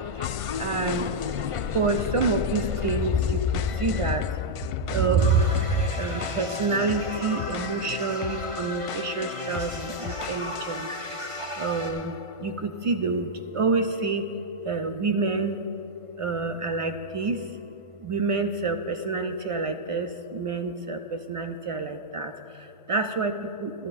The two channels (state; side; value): late; left; 1.5 ms